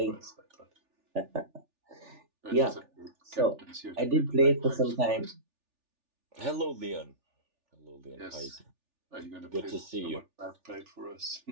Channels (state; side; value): late; left; 3.4 ms